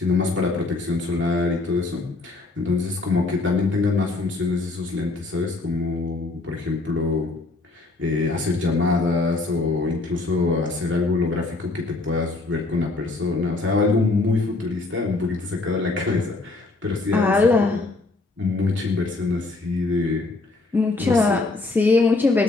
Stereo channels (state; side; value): quieter; right; 3.4 dB